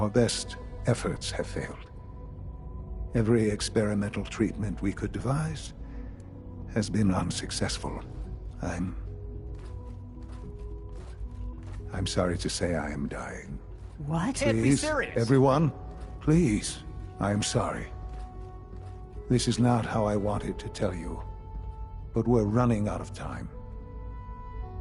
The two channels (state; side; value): identical; both; correlation 1.00